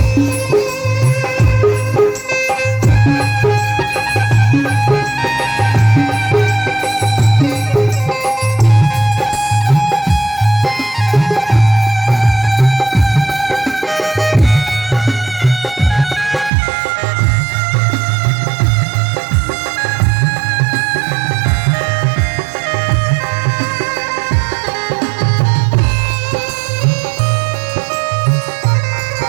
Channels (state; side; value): drops out; left; at 16.5 s